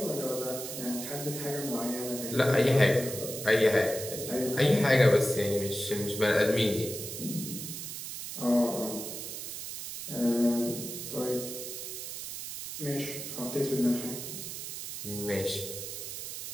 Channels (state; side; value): noise; right; hiss, 7 dB below the sound